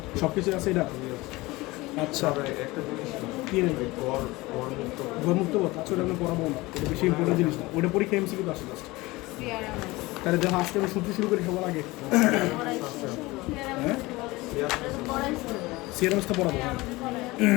সব কিছু আছে এটা? আচ্ছা, কি গরমুক্ত পথ? আচ্ছা, ওটা আমি পড়াবো না, এটা বেশি ইম্পর্টেন্ট জিনিস না, ওটা পরীক্ষা এমসিকিউ আসে লাস্ট। তাহলে দেখো আজকে আমি সূত্র শুরু করি সবার আগে। হ্যাঁ, সিআরএমএস তো পড়াবো।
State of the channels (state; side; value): quieter; right; 21.2 dB